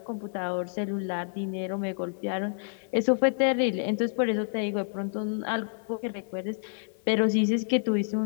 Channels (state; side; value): silent; right; 59 dB below the other